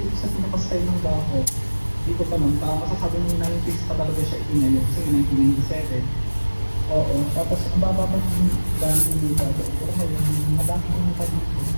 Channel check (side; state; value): both; inverted; correlation -1.00